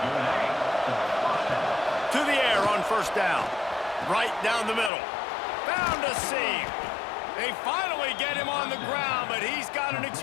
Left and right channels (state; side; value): drops out; right; at 4.9 s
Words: To the air on first down. Right down the middle. Found a seam. They finally get him on the ground, but he's got an